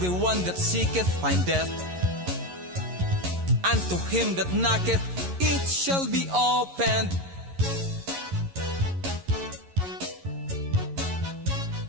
that seeketh, findeth. And to him that knocketh, it shall be opened.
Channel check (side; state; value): left; late; 11 ms